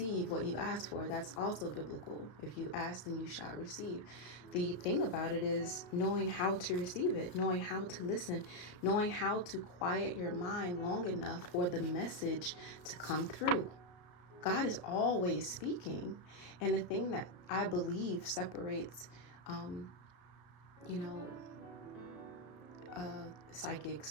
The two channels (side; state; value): right; late; 34 ms